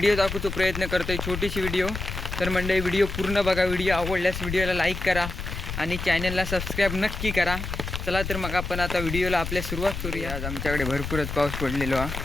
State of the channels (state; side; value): noise; left; rumble, 6 dB below the sound